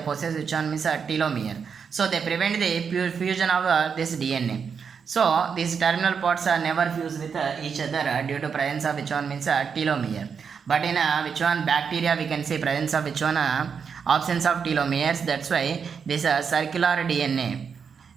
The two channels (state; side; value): quieter; left; 6.4 dB